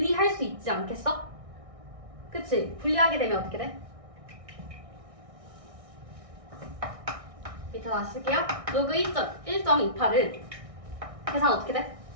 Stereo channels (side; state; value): left; late; 1.6 ms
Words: 수 있지 않겠어? 그치? 분리하게 되면 어떻게 돼? 밑에 다시 쓸게요. 로그 1.28은 계산 어떻게 돼?